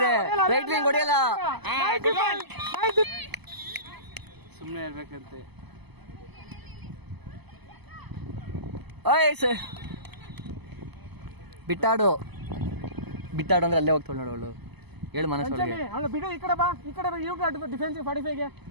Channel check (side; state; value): left; late; 0.99 ms